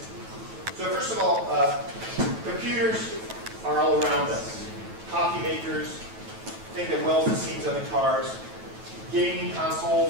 So first of all, computers are all around us. Coffee makers, thing that welds the seams on the cars, gaming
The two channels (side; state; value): left; late; 9.3 ms